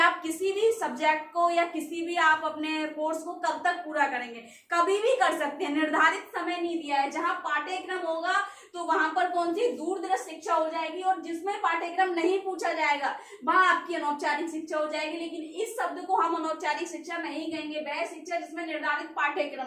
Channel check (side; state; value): both; identical; correlation 1.00